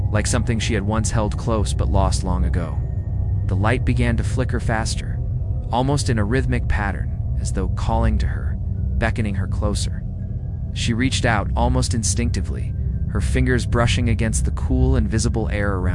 like something she had once held close but lost long ago. The light began to flicker faster, almost in a rhythmic pattern, as though calling to her, beckoning her closer. She reached out almost instinctively, her fingers brushing against the cool and visible air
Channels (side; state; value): both; identical; correlation 1.00